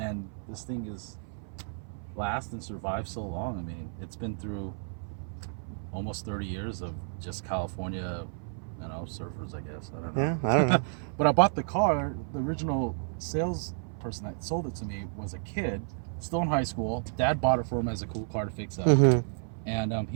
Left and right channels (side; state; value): left; silent; 56 dB below the other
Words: this thing is last and survived so long. It's been through almost 30 years of just California, surfers, I guess. I don't know. Yeah, I don't know. But I bought the car. The original salesperson that sold it to me was a kid, still in high school. Dad bought it for him as a cool car to fix up. Mm-hmm. And